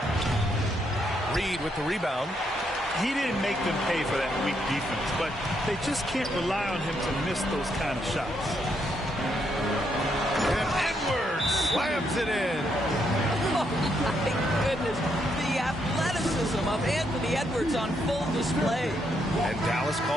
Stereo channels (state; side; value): normal; both; correlation 0.76